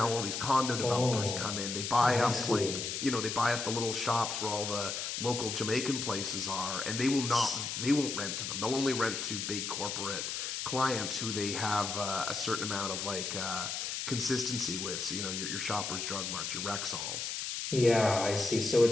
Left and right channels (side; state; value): left; noise; hiss, 3 dB below the sound